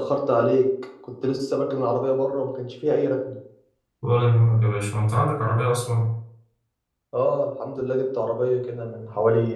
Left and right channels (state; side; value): identical; both; correlation 1.00